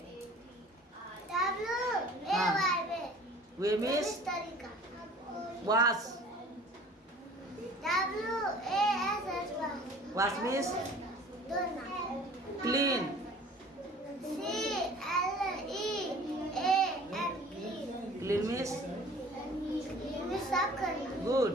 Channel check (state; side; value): normal; both; correlation 0.47